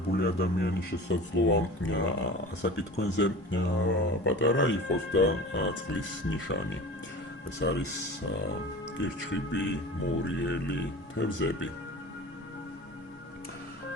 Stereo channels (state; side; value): normal; both; correlation 0.36